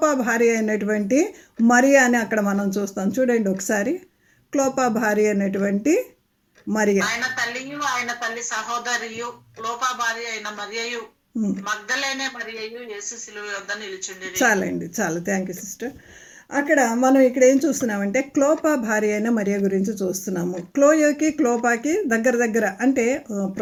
భార్య అయినటువంటి మరియా అని అక్కడ మనం చూస్తాం. చూడండి ఒకసారి. క్లోపా భార్య అయినటువంటి మరియా, ఆయన తల్లియు ఆయన తల్లి సహోదరియు క్లోపా భార్య అయిన మరియయు మగ్దలేనే మరియయు యేసు శిలువ వద్ద నిలుచుండిరి. చాలండి, చాలు. Thank you sister. అక్కడ మనం ఇక్కడ ఏం చూస్తున్నామంటే క్లోపా భార్య అయిన మరియా గురించి చూస్తున్నాము. క్లోయోకి క్లోపాకి దగ్గర అంటే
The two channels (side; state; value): both; identical; correlation 1.00